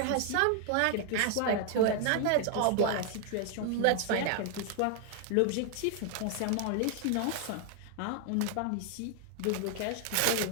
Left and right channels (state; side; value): different; both; correlation 0.00